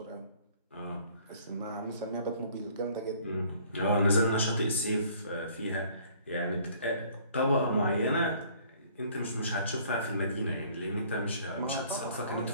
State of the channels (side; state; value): both; inverted; correlation -0.57